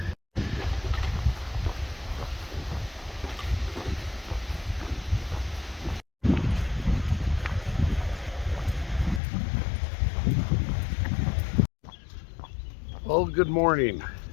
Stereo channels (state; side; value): drops out; right; at 9.2 s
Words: Well, good morning.